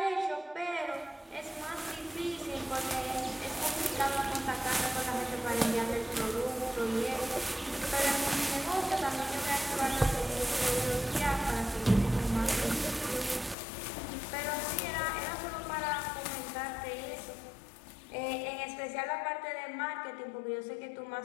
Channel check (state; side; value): drops out; right; at 13.6 s